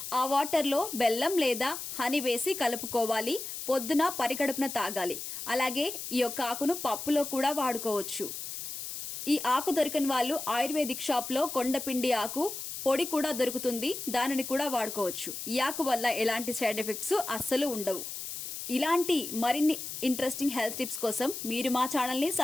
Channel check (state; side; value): noise; left; hiss, 7 dB below the sound